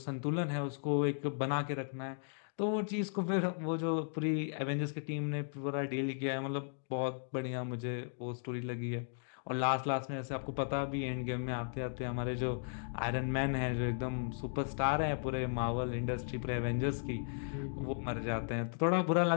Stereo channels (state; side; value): silent; right; digital silence